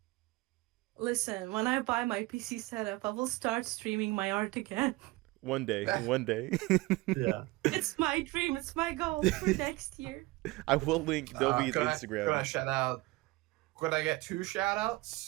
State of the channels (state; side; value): quieter; left; 21.2 dB